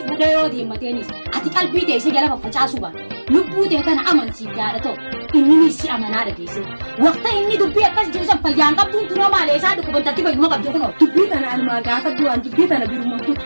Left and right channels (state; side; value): inverted; both; correlation -1.00